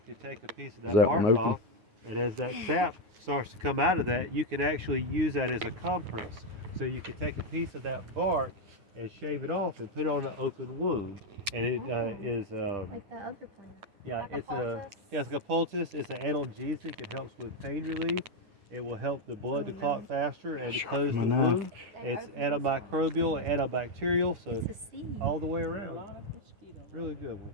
could take a piece of that that bark one open? off, and as that sap starts to come out of that, you can actually use that as a compress. So you could take a piece of that bark and shave it off and put it on an open wound. And it is Like that other plant. yeah, Like a it's poultice? it's like a poultice. It's an analgesic. It helps with pain relief. It will help the blood to clot faster and to close the my knife. wound. It's antimicrobial, antibacterial, so It's a seed. all the way A around. lot of mosquitoes. Really good one.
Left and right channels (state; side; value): late; left; 9.6 ms